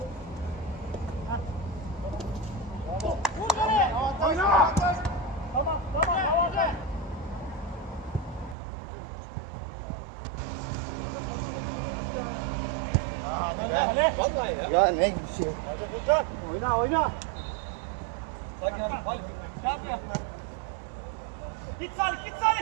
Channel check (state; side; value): drops out; left; at 8.6 s